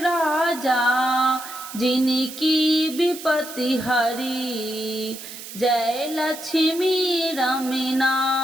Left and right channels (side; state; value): right; noise; hiss, 12 dB below the sound